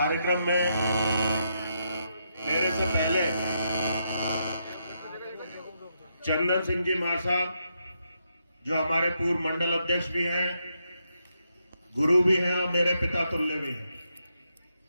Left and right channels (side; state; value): both; inverted; correlation -0.81